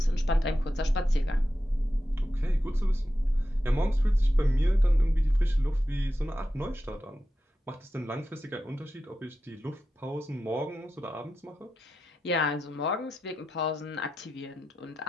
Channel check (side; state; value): both; normal; correlation 0.91